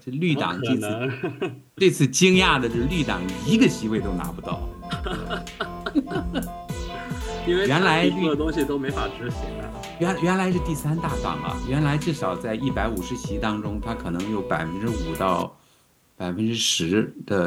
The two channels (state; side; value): identical; both; correlation 1.00